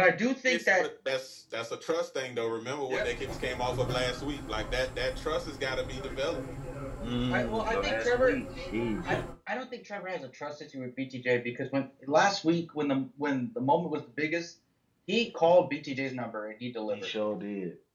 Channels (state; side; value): identical; both; correlation 1.00